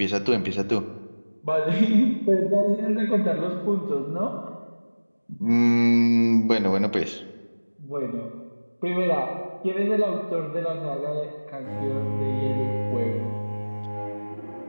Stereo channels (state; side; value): inverted; both; correlation -1.00